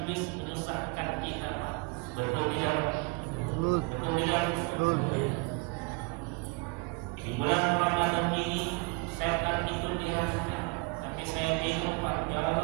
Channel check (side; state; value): left; quieter; 28.0 dB